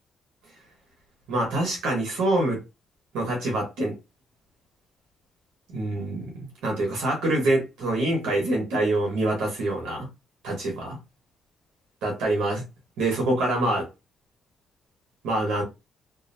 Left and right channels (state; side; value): normal; both; correlation 0.72